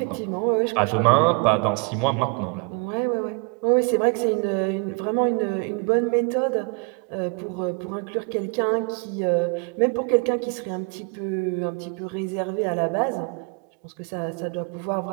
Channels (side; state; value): left; quieter; 33.0 dB